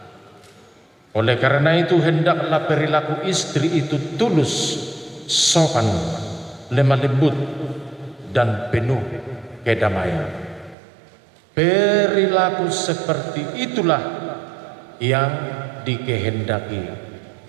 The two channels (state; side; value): drops out; left; at 10.8 s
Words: Oleh karena itu hendaklah perilaku istri itu tulus, sopan, lemah lembut, dan penuh kedamaian. Perilaku seperti itulah yang dikehendaki